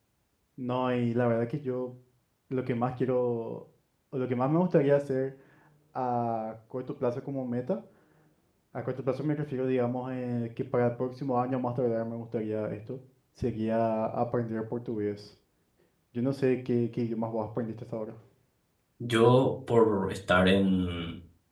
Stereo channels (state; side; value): identical; both; correlation 1.00